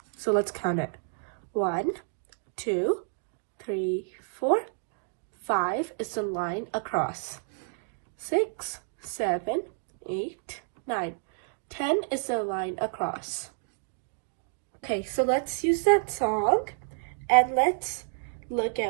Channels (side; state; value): left; silent; digital silence